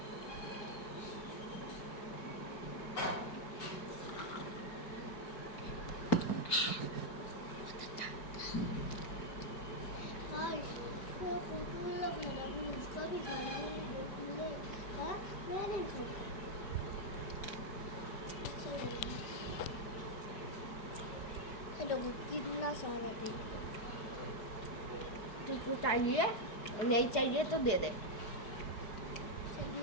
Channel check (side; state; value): right; late; 4.7 ms